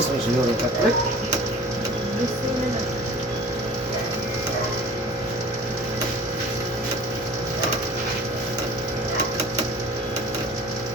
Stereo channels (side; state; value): both; normal; correlation 0.44